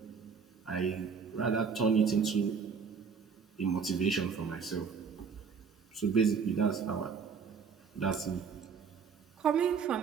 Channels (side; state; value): left; quieter; 6.0 dB